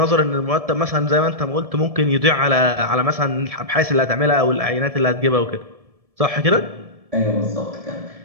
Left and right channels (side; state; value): left; late; 1.7 ms